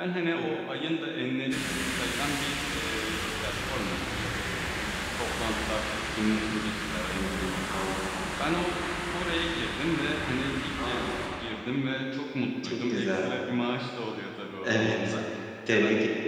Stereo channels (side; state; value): both; identical; correlation 1.00